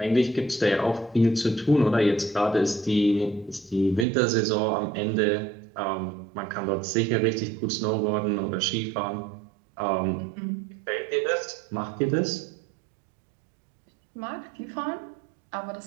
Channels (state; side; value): drops out; left; at 4.0 s